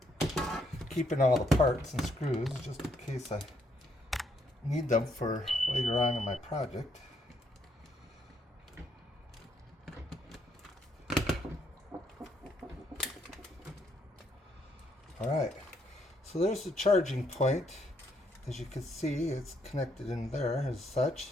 Keeping all the parts and screws just in case I need them for later on in my project. Alright, so there's the charging point. As you can see, it's connected in there as such.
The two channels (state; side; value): normal; both; correlation 0.73